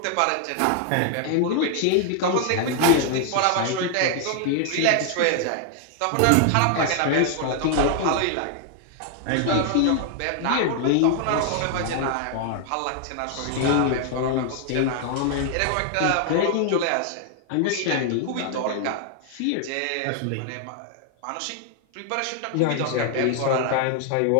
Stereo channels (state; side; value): different; both; correlation 0.00